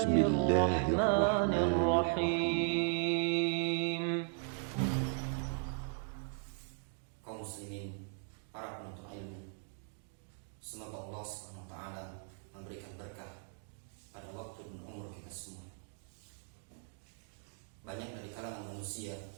الرحمن الرحيم. Kaum muslimin, para penuntut ilmu, semoga Allah SWT memberikan berkah pada waktu dan umur kita semua. Banyak dari kalangan manusia,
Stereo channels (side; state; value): left; silent; 53 dB below the other